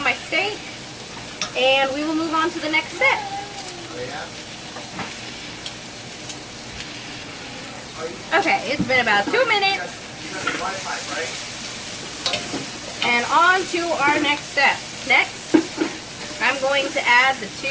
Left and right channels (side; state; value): both; identical; correlation 1.00